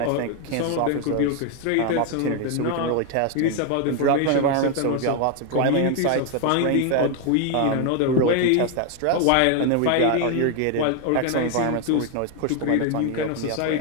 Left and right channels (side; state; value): both; different; correlation 0.01